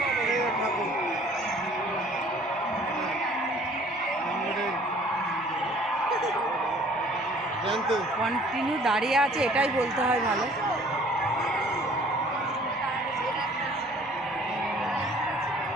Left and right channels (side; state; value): both; normal; correlation 0.54